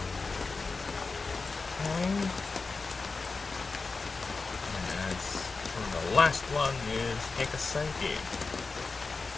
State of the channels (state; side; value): quieter; right; 4.2 dB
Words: Last one is take a psyche.